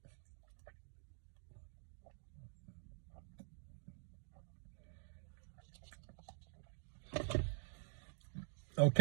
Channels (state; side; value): silent; left; digital silence